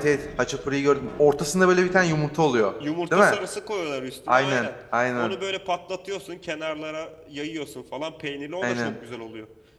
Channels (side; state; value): both; identical; correlation 1.00